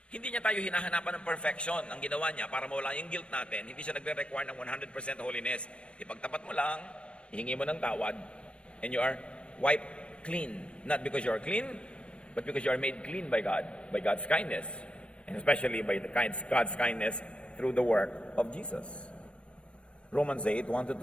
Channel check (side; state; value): right; late; 0.059 ms